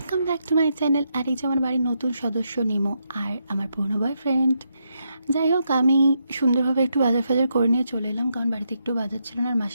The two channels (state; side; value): inverted; both; correlation -0.81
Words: back to my channel. আর এই যে আমার বাড়ির নতুন সদস্য নিমো আর আমার পুরনো বয়ফ্রেন্ড। যাই হোক, আমি সুন্দরভাবে একটু বাজার ফাজার করে নিয়ে চলে এলাম, কারণ বাড়িতে একটু বাজার ছিল না। আর